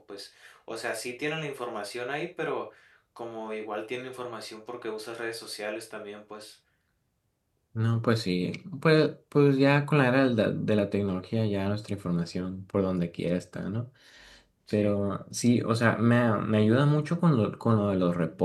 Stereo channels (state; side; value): identical; both; correlation 1.00